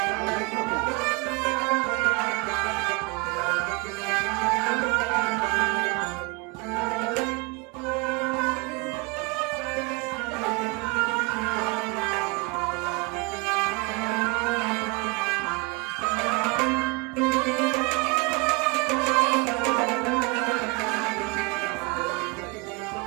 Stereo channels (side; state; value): left; quieter; 27.9 dB